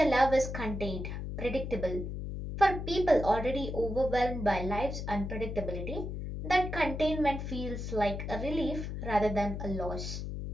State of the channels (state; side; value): noise; left; hum, 5 dB below the sound